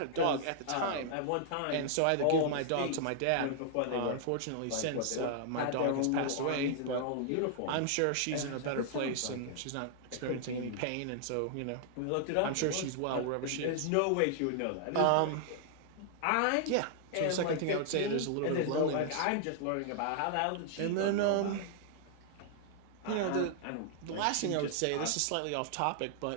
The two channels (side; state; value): both; different; correlation -0.01